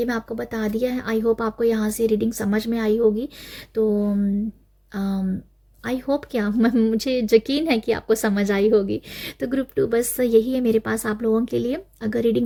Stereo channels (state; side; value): identical; both; correlation 1.00